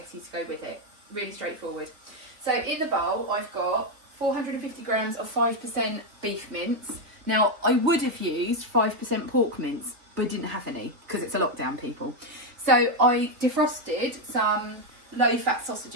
to go with it. Really straightforward. So in the bowl I've got 450 grams of 5% beef mince. Now I would have used 5% pork mince, but I didn't have any because it's a lockdown, people. So I defrosted some low fat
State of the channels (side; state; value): left; late; 3.4 ms